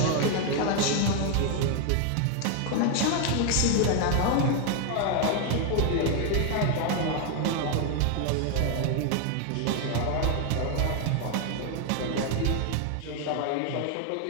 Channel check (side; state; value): both; different; correlation 0.01